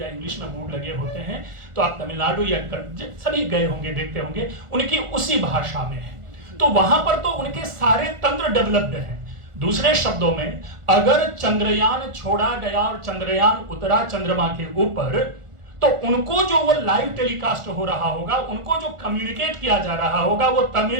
इंग्लिश में बोर्ड लगे होते हैं, तो आप तमिलनाडु या सभी गए होंगे, देखते होंगे, उनकी उसी भाषा में है। तो वहां पर तो उनके सारे तंत्र डेवलप्ड हैं। दूसरे शब्दों में, अगर चंद्रयान छोड़ा गया और चंद्रयान उतरा चंद्रमा के ऊपर, तो उनको जो वो लाइव टेलीकास्ट हो रहा होगा, उनको जो कम्युनिकेट किया जा रहा होगा, वो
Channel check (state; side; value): late; left; 1.4 ms